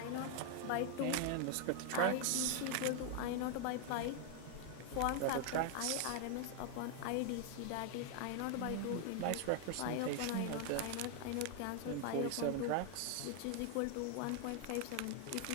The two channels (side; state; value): both; different; correlation 0.00